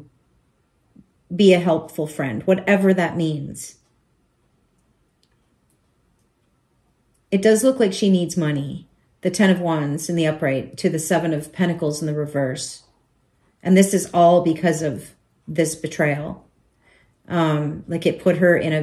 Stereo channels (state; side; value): identical; both; correlation 1.00